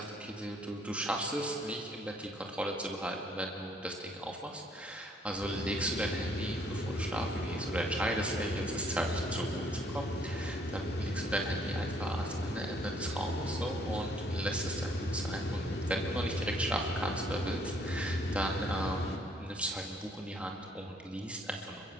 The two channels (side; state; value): both; normal; correlation 0.64